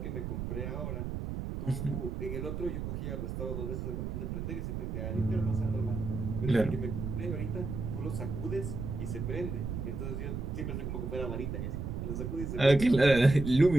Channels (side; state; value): right; noise; rumble, 4 dB below the sound